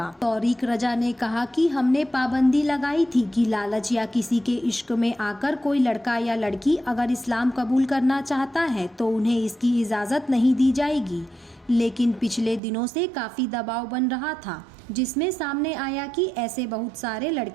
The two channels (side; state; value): left; drops out; at 12.6 s